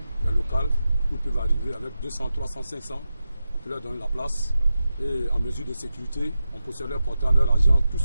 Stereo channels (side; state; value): both; inverted; correlation -0.91